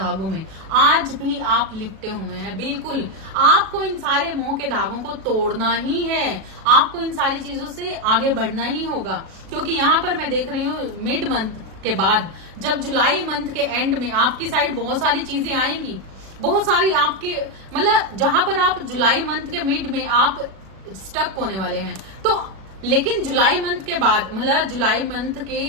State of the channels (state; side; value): late; left; 37 ms